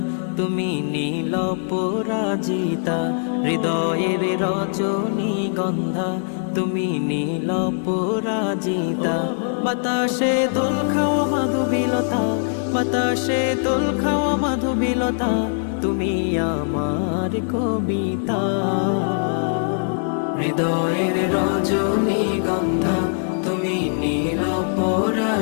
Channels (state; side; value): silent; right; digital silence